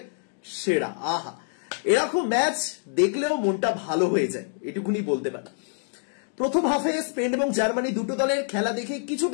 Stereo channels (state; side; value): silent; right; 61 dB below the other